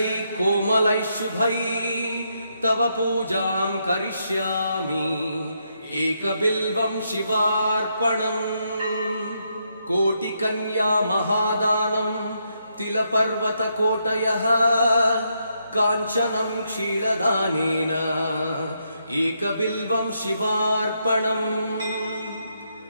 कोमलै शुभै तव पूजां करिष्यामि एकबिल्वं शिवार्पणम् कोटिकन्या महादानम् तिलपर्वतकोटयः काञ्चनं क्षीरदानेन एकबिल्वं शिवार्पणम्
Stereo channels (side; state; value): both; inverted; correlation -0.79